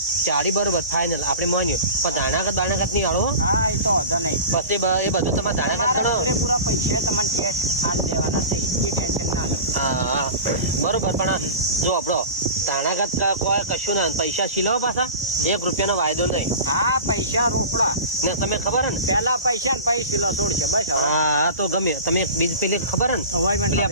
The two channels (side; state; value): both; inverted; correlation -0.34